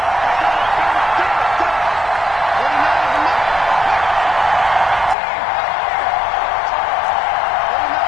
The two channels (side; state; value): right; drops out; at 5.2 s